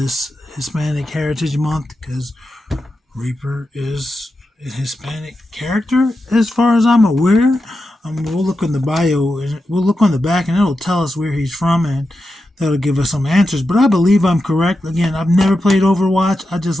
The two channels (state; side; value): normal; both; correlation 0.89